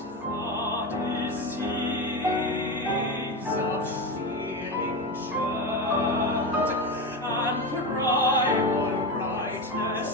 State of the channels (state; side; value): normal; both; correlation 0.18